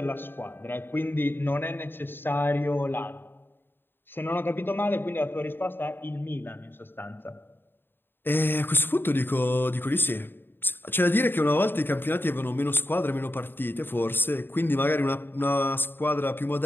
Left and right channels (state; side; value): late; right; 0.099 ms